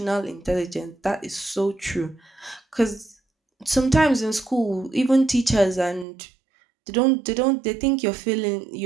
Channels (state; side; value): drops out; left; at 6.1 s